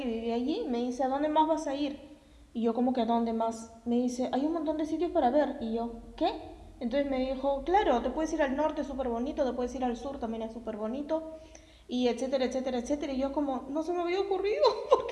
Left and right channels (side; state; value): both; identical; correlation 1.00